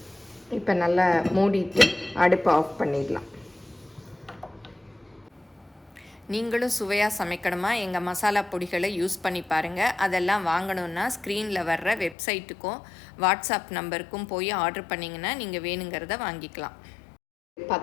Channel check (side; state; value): right; drops out; at 12.2 s